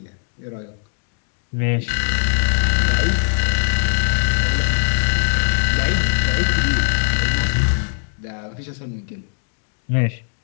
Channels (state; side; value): silent; right; digital silence